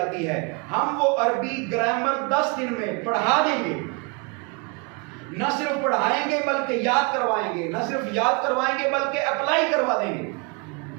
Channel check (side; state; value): left; quieter; 32.0 dB